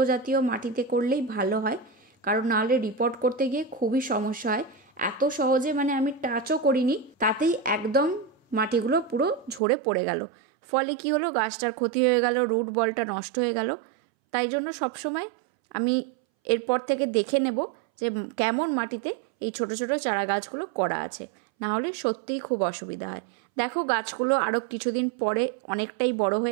জাতীয় মাটিতে করলেই ভালো হয়, কারণ নাহলে রিপোর্ট করতে গিয়ে খুবই সমস্যা হয়। এত সহজে আমি টাচও করিনি, তাতেই একদম মাটিগুলো পুরো ঝরে পড়ে গেল। ফলে কি হলো, গাছটার ক্ষতি হয়ে গেল, রুট বলটা নষ্ট হয়ে গেল। তাই জন্য সবসময় আমি এরপর থেকে দেখে নেব যে কেমন মাটিতে এই ছোট ছোট চারা গাছগুলো করা আছে, না হলে সত্যিই খুব অসুবিধা হয়। দেখো গাছগুলো আরও কিছুদিন পরে অনেকটাই বড়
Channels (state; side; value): drops out; left; at 9.6 s